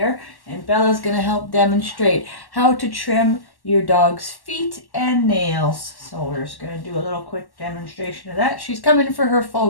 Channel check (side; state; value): right; late; 1.1 ms